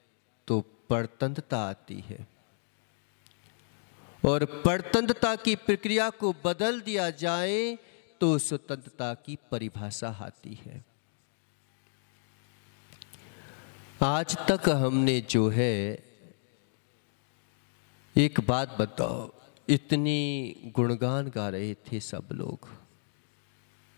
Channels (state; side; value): silent; right; digital silence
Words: तो परतंत्रता आती है, और परतंत्रता की प्रक्रिया को बदल दिया जाए तो स्वतंत्रता की परिभाषा आती है। आज तक हमने जो है, एक बात बताओ, इतनी गुणगान गा रहे थे सब लोग